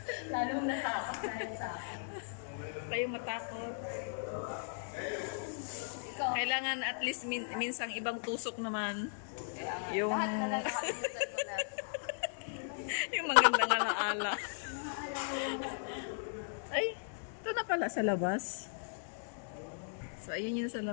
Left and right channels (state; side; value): silent; right; digital silence